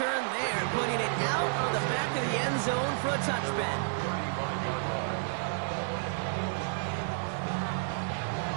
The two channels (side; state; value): left; silent; 57 dB below the other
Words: there, putting it out on the back of the end zone for a touchback.